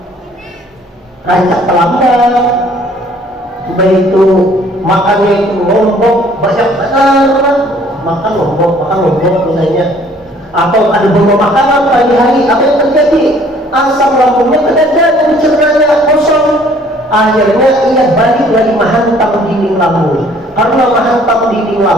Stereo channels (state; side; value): normal; both; correlation 0.58